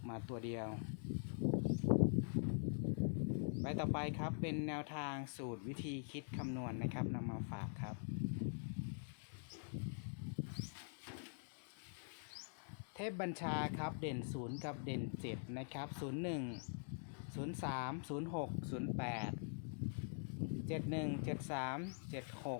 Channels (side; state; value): right; silent; digital silence